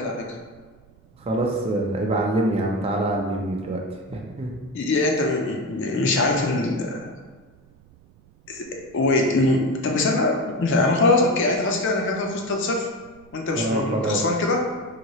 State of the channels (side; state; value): right; noise; rumble, 28 dB below the sound